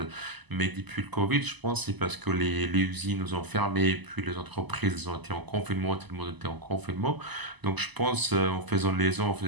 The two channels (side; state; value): left; late; 1.0 ms